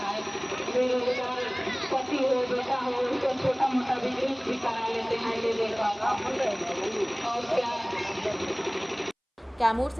है। बेरोजगार पति हो, बेटा हो, उसको छोटा मोटा बिजनेस भी करा लेते हैं ले लेकर। और क्या। कैमूर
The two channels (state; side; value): identical; both; correlation 1.00